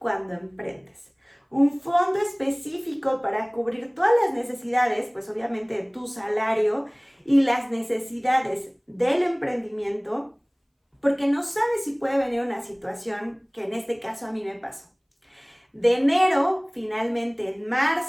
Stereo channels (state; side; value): identical; both; correlation 1.00